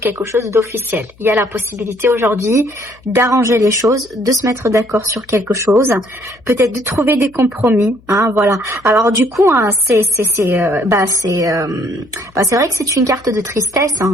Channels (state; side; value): noise; left; hum, 28 dB below the sound